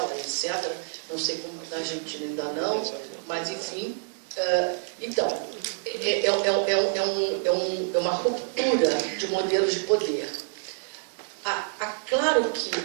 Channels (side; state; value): left; silent; digital silence